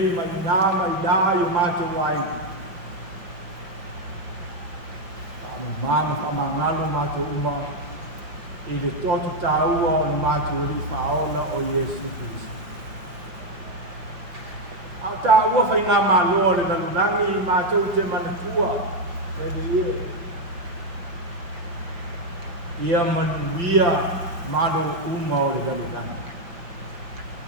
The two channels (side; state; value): left; late; 5.5 ms